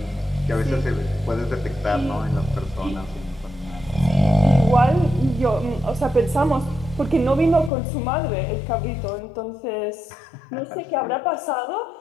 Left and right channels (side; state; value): right; drops out; at 7.7 s